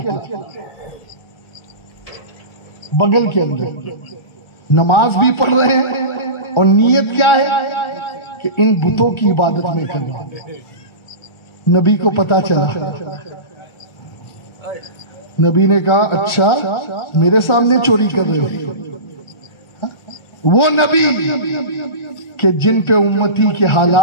تھے، بغل کے اندر نماز بھی پڑھ رہے ہیں اور نیت کیا ہے کہ ان بتوں کی عبادت میں کرنا۔ نبی کو پتا چلا، نبی نے کہا اچھا میرے سامنے چوری کر رہے ہو؟ وہ نبی کہ جن پہ امتی کے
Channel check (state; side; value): late; right; 1.4 ms